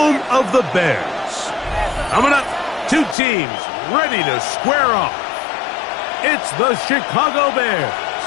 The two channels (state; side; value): drops out; right; at 3.2 s